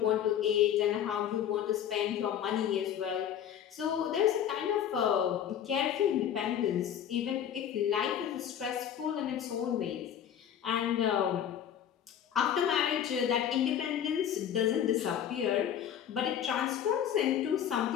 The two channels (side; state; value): right; quieter; 9.5 dB